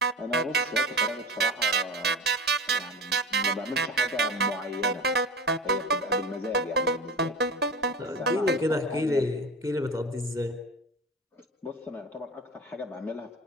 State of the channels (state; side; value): normal; both; correlation 0.31